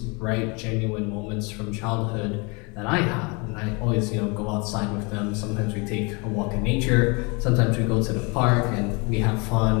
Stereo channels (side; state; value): right; quieter; 29.9 dB